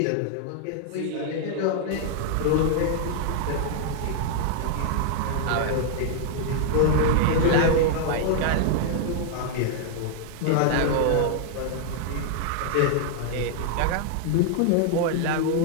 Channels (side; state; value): both; different; correlation -0.01